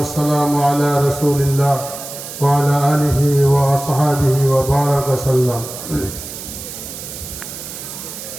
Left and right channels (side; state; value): right; noise; hiss, 10 dB below the sound